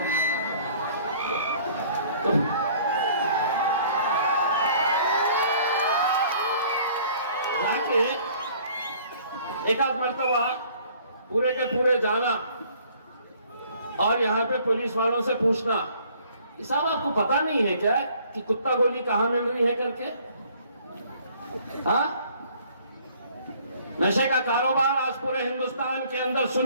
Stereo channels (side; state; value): both; inverted; correlation -0.56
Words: जाके एक आध मर्तबा पूरे के पूरे जाना और यहाँ पे पुलिस वालों से पूछना, साहब आपको पता नहीं है क्या कि कुत्ता गोली कहां मिल रही है करके? हाँ, नशे का कारोबार आज पूरे हिंदुस्तान के अंदर,